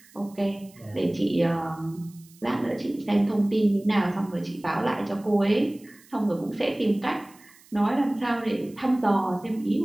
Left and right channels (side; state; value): right; noise; hiss, 26 dB below the sound